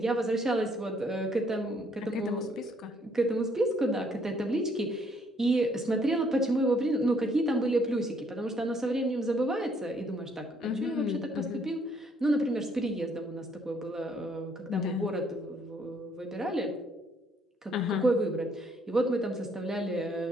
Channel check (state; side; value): normal; both; correlation 0.67